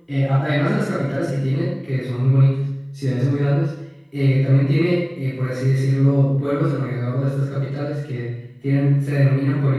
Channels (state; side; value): identical; both; correlation 1.00